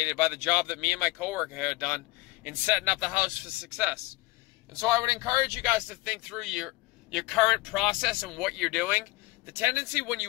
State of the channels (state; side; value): quieter; right; 21.4 dB